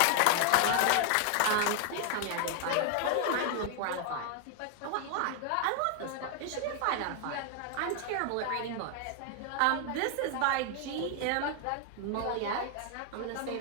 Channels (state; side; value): different; both; correlation 0.00